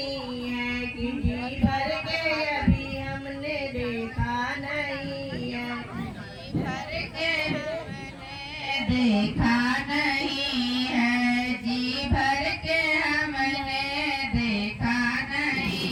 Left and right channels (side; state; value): both; identical; correlation 1.00